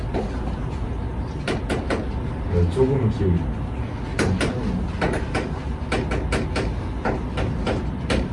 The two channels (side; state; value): both; identical; correlation 1.00